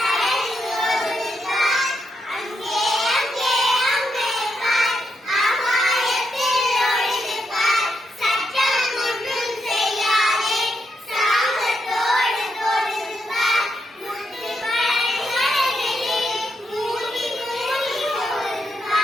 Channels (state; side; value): normal; both; correlation 0.82